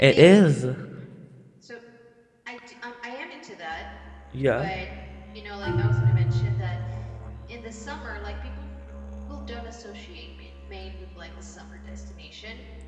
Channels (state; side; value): identical; both; correlation 1.00